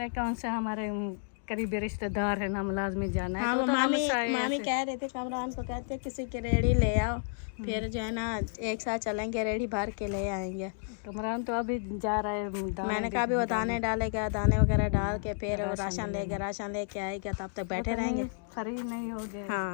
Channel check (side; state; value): right; silent; digital silence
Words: कौन सा हमारे करीबी रिश्तेदार है ना, लाजमी जाना है। हाँ, तो मामी कह रहे थे, कमरान को कहते किसी की रेड़ी ले आओ, फिर जो है ना एक साथ चलेंगे, रेड़ी भर के ले आएंगे। कमरान तो अभी जा रहा है। मैंने कहा भी वो दाने डालेगा, दाने वगैरह डाल के फिर वो राशन लेके आएगा, तब तक बैठे रहेंगे। फ्री नहीं हो गए।